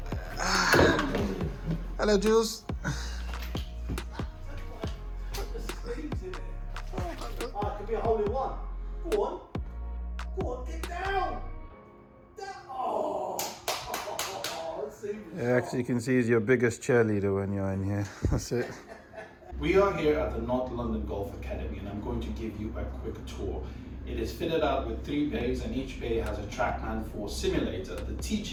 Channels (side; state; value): both; identical; correlation 1.00